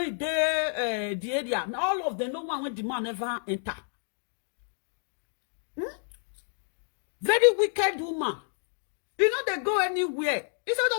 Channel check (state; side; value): silent; right; digital silence